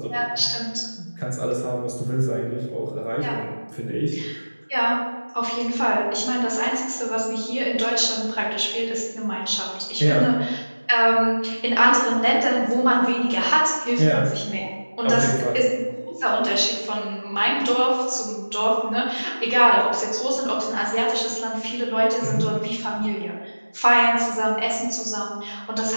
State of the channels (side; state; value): both; inverted; correlation -1.00